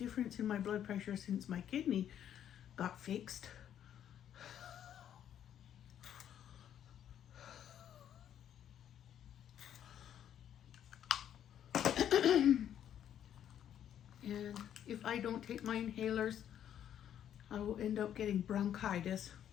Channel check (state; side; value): quieter; right; 10.0 dB